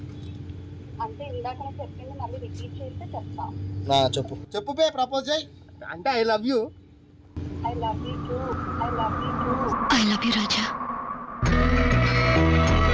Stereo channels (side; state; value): both; identical; correlation 1.00